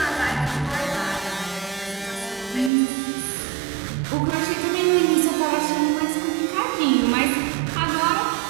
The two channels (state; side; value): drops out; left; at 2.7 s